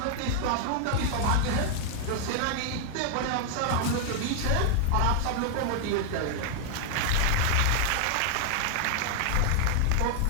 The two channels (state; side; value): different; both; correlation 0.00